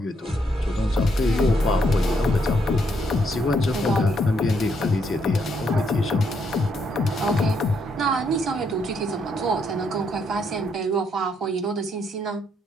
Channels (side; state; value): both; normal; correlation 0.74